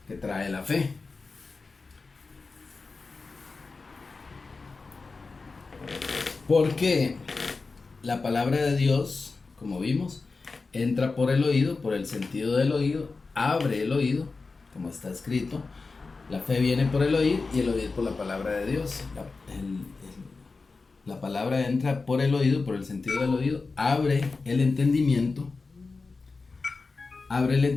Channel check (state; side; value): quieter; right; 4.1 dB